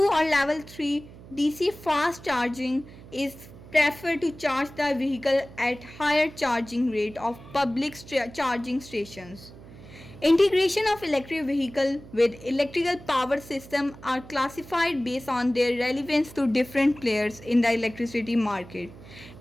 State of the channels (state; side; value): noise; right; hum, 18 dB below the sound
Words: or level 3 DC fast charging is preferred to charge the vehicle at higher charging rate of public charging stations. Integration of electric vehicle with electrical power system are classified based on their relevance to different players in the electricity market.